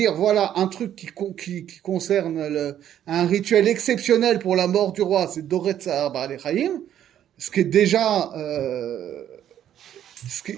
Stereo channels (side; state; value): left; quieter; 10.7 dB